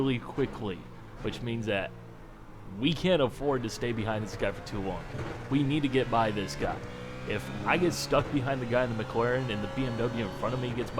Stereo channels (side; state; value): both; identical; correlation 1.00